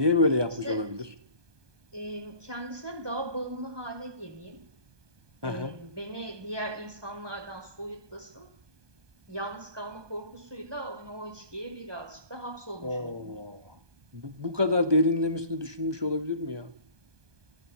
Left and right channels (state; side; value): late; left; 1.2 ms